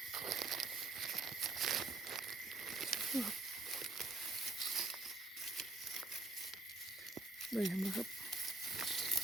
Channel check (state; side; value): quieter; left; 3.2 dB